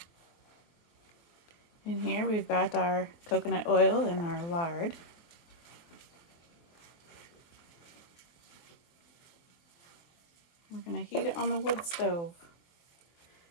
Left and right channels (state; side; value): late; right; 24 ms